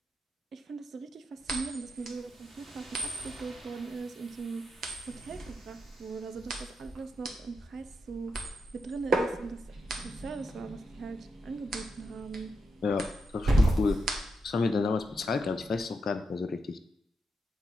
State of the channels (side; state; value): both; normal; correlation 0.85